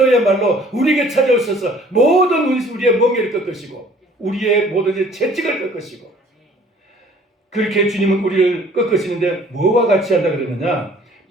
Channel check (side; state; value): both; normal; correlation 0.54